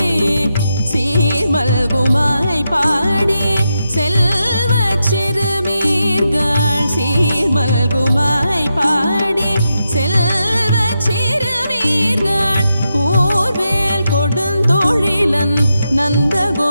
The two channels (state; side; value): inverted; both; correlation -0.87